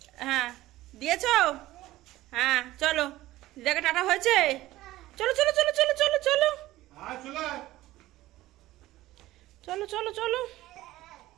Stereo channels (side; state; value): left; quieter; 16.4 dB